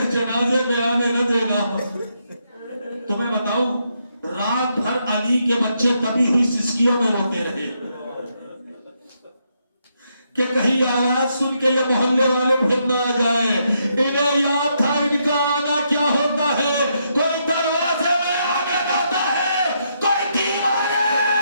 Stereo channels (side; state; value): both; inverted; correlation -0.78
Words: جنازے میں آنے نہ دے گا. تو میں بتاؤں رات بھر علی کے بچے تبھی ہوئی سسکیوں میں روتے رہے کہ کہیں آواز سن کے یہ محلے والے پھر نہ آ جائے. انہیں یاد تھا ان کا آنا کیا ہوتا ہے. کوئی دروازے میں آنے جاتا ہے کوئی دیوانے.